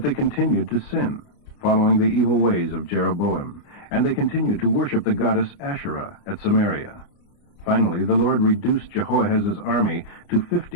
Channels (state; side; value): late; right; 29 ms